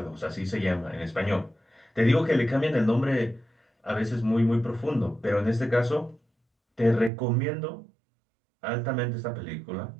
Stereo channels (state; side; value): drops out; left; at 7.1 s